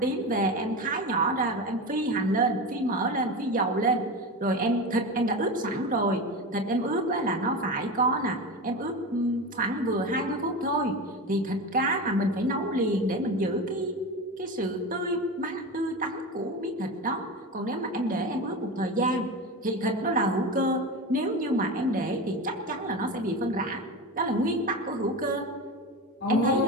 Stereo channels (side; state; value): both; normal; correlation 0.24